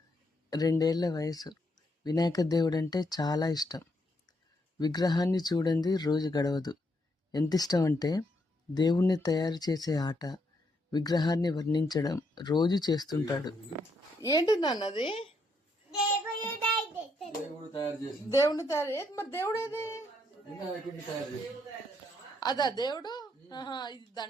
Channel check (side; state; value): both; normal; correlation 0.76